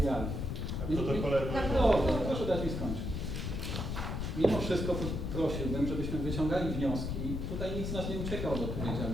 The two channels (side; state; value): left; noise; rumble, 3 dB below the sound